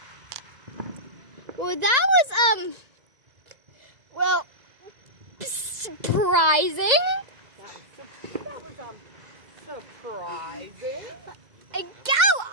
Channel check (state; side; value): late; left; 2.0 ms